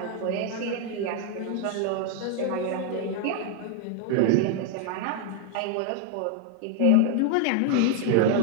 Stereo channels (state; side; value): different; both; correlation 0.00